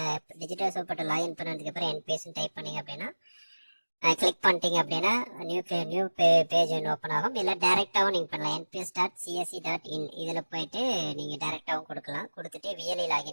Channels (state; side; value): inverted; both; correlation -1.00